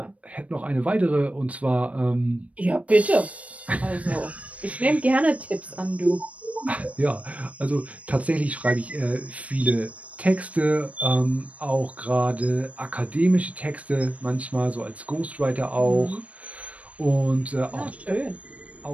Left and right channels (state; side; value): late; left; 0.066 ms